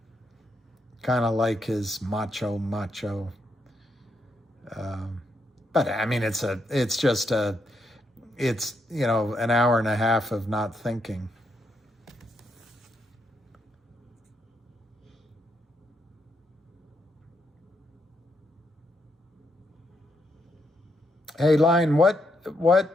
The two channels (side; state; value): both; normal; correlation 0.78